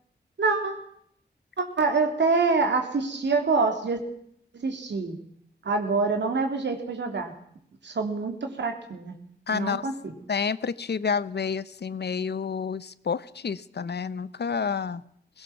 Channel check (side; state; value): both; normal; correlation 0.11